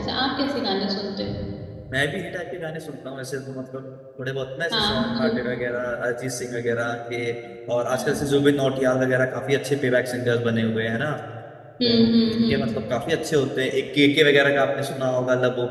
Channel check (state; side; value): identical; both; correlation 1.00